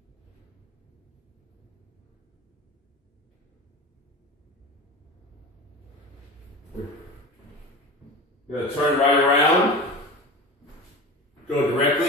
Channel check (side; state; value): both; normal; correlation 0.31